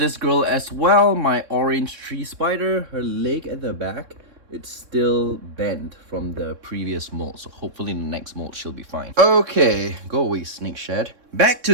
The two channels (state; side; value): late; left; 3.6 ms